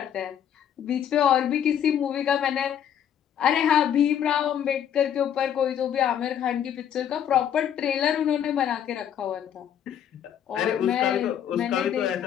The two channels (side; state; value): right; quieter; 9.4 dB